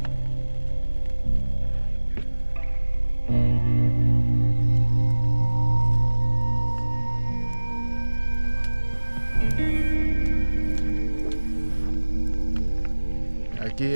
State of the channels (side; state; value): both; inverted; correlation -1.00